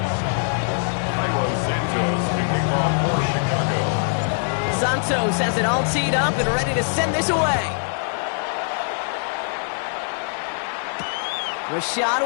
Santos has it all teed up and ready to send this away. Rashad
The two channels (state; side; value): silent; right; digital silence